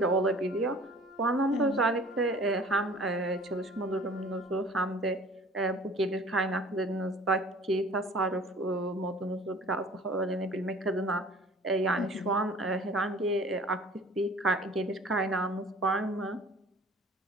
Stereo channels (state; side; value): normal; both; correlation 0.48